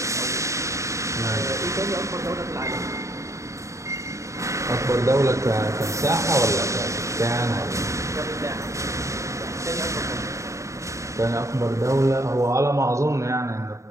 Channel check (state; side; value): late; left; 0.15 ms